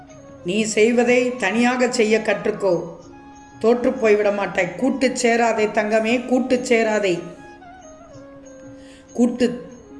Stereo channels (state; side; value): identical; both; correlation 1.00